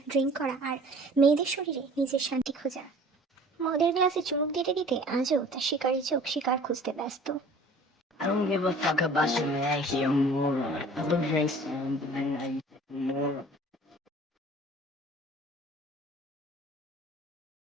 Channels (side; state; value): both; normal; correlation 0.48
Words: ড্রিঙ্ক করা আর মেয়েদের শরীরে নিজের শান্তি খোঁজা। মদের গ্লাসে চুমুক দিতে দিতে আজও তার শিকারী চোখ শিকার খুঁজতে ব্যস্ত। I don't give a fuck about your man, he a moron. I look very soon, but I know you a moron.